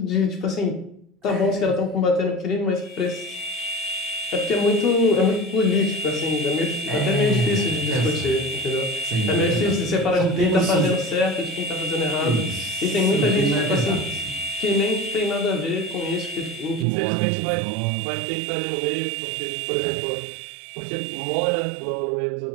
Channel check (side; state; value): left; drops out; at 16.9 s